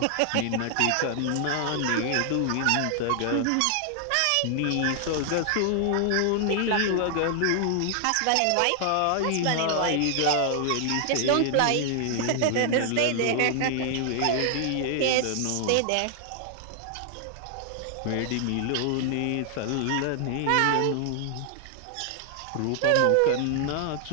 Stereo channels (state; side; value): different; both; correlation 0.00